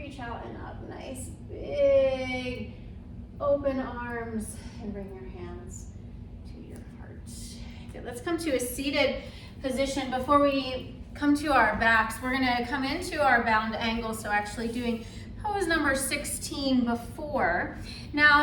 out and up, nice big open arms, and bring your hands to your heart. Good, let's come to a seated position. Before we come to our backs, we're gonna come into our bound angle, so actually doing pose number 16 before.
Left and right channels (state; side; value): identical; both; correlation 1.00